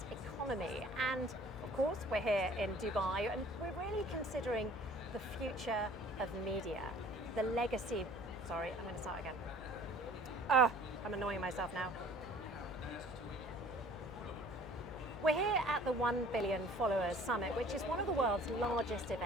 economy. And of course, we're here in Dubai and we're really considering the future of media, the legacy. Sorry, I'm going to start again. I'm annoying myself now. We're here at the 1 Billion Followers Summit, which is one of the world's largest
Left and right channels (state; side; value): noise; left; hum, 14 dB below the sound